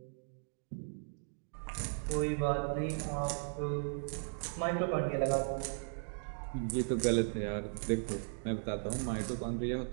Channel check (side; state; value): left; silent; digital silence